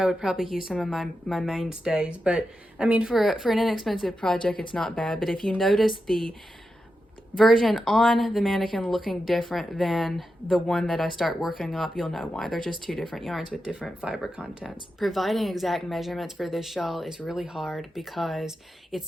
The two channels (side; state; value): both; normal; correlation 0.88